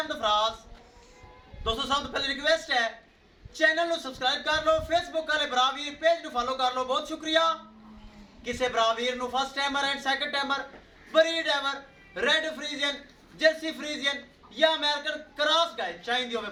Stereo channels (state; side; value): identical; both; correlation 1.00